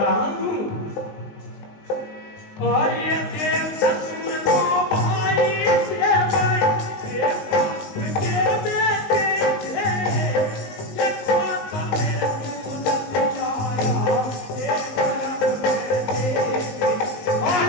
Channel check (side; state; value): right; late; 19 ms